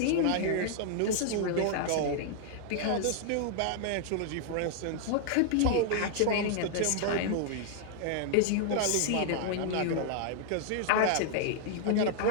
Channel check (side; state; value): both; different; correlation -0.01